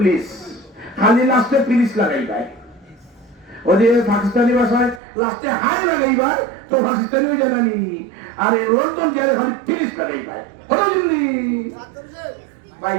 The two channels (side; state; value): left; drops out; at 5.0 s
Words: খালি লাস্টে পুলিশ লাগাই ভাই ওদের পাকিস্তানি ভাষায় লাস্টে হাই লাগাইবার তো পাকিস্তানি হয়ে জানানি আর লন্ডন জেলে খালি পুলিশ লাগাইবার হলো জলদি ভাই